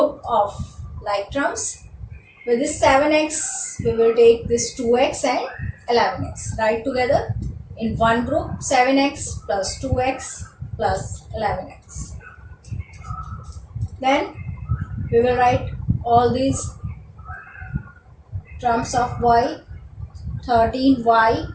of like terms. With this 7x we will take this 2x and 11x. Write together in one group 7x plus 2x plus 11x. Then we will write all these terms of y. 13y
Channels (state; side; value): identical; both; correlation 1.00